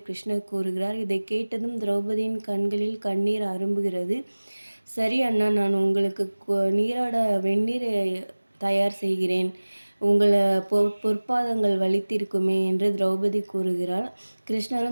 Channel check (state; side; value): inverted; both; correlation -1.00